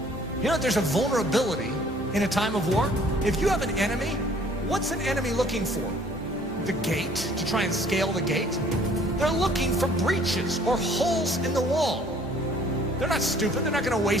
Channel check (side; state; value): both; normal; correlation 0.57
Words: There's a vulnerability in a time of war. If you have an enemy, what's an enemy looking for? The gate, to try and scale the gate? They're looking for breaches or holes in the wall. They're not stupid. They're not going to